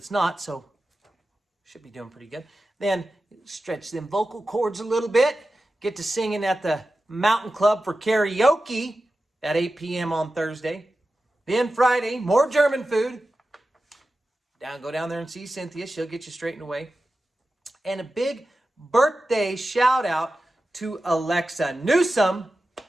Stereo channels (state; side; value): normal; both; correlation 0.93